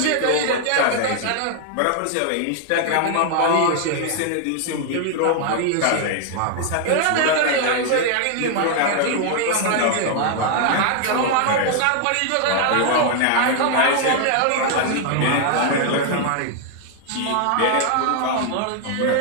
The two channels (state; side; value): different; both; correlation 0.00